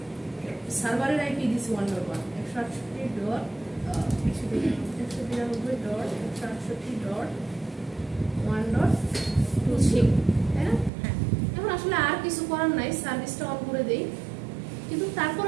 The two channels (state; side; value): drops out; left; at 10.9 s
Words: সার্ভারের আইপি দিছি 1.1 168.168.1.23, তাই না? এখন আসলে আর কিছু করার নাই, সার্ভিসটা অন করে দেই। কিন্তু